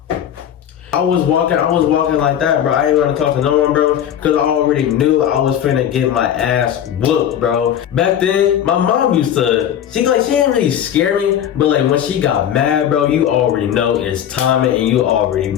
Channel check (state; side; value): quieter; right; 9.9 dB